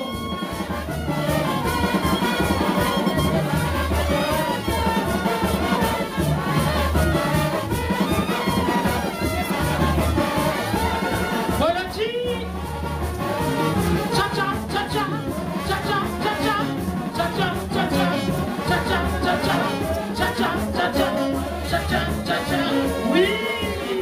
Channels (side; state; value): both; identical; correlation 1.00